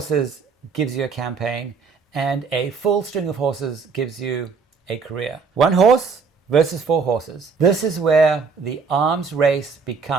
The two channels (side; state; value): left; quieter; 5.1 dB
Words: gives you a campaign, and a full string of horses gives you a career. 1 horse versus 4 horses. This is where the arms race